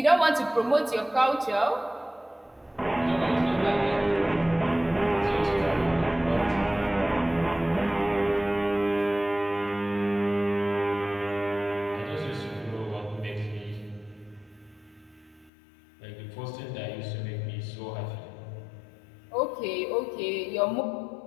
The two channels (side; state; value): right; drops out; at 15.5 s